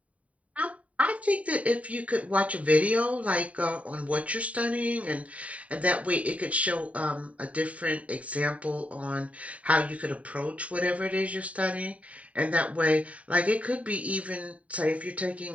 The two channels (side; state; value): left; late; 0.067 ms